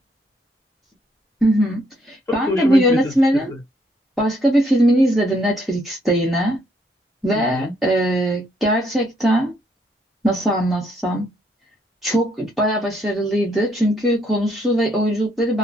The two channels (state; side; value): normal; both; correlation 0.71